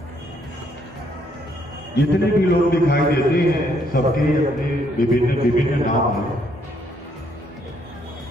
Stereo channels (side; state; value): both; normal; correlation 0.70